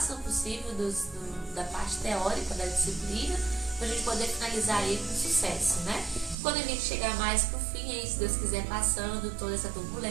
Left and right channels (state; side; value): drops out; left; at 6.4 s